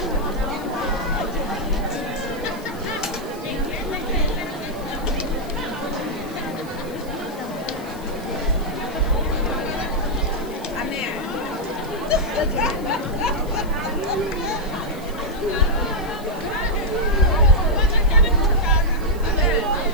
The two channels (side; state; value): left; noise; hiss, 21 dB below the sound